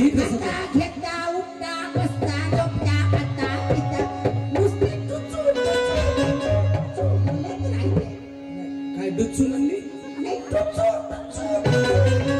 कसं आता घेता उठता बसता झोपता खाता पिता नुसती टुचू बोलत राहते काय डुच्चू म्हणली नाही टुचू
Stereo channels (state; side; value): identical; both; correlation 1.00